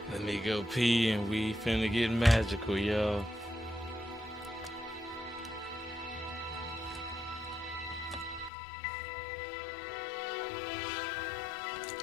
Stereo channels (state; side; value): drops out; right; at 8.5 s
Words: Let me go pee and we finna get magical, y'all.